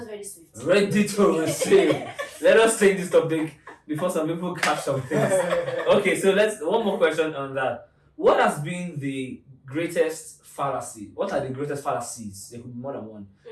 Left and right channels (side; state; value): both; identical; correlation 1.00